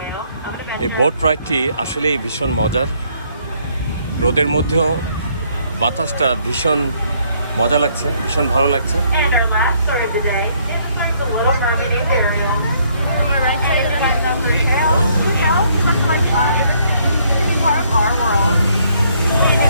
I'm gonna এই boat রাইডটি আসলেই ভীষণ মজার। রোদের মধ্যেও বাতাসটা ভীষণ মজা লাগছে, ভীষণ ভালো লাগছে। And our last story of the day is like the Little Mermaid named Ariel. On the right side of the tail, she tells much like part of our world.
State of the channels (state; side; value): inverted; both; correlation -0.67